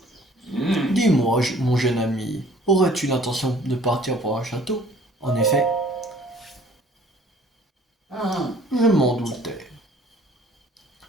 Dis-moi, mon jeune ami, aurais-tu l'intention de partir pour un château? En effet, je m'en doutais.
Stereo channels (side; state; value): both; normal; correlation 0.54